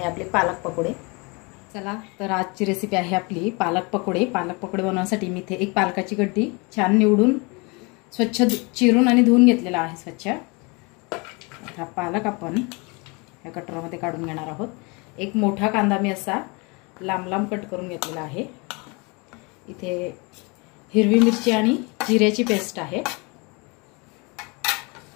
आपली पालक पकोडे। चला तर आजची रेसिपी आहे आपली पालक पकोडे। पालक पकोडे बनवण्यासाठी मी इथे एक पालकाची गड्डी छान निवडून स्वच्छ चिरून आणि धुवून घेतलेला आहे स्वच्छ। हा पालक आपण या कटोऱ्यामध्ये काढून घेणार आहोत। एक मोठा कांदा मी असा लांब लांब कट करून घेतलेला आहे। इथे हिरवी मिरची आणि जिऱ्याची पेस्ट आहे।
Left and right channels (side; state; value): right; quieter; 29.0 dB